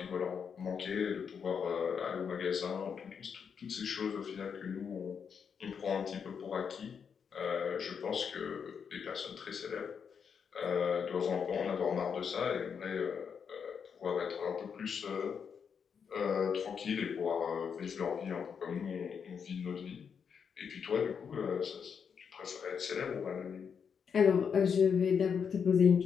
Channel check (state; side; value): quieter; right; 6.8 dB